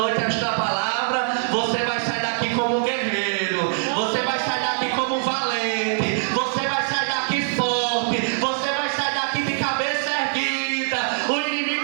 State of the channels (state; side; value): silent; left; digital silence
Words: esta palavra: você vai sair daqui como guerreiro, você vai sair daqui como valente, você vai sair daqui forte, você vai sair daqui de cabeça erguida. O